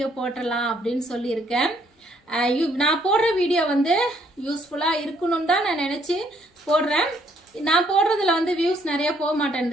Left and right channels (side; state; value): both; normal; correlation 0.68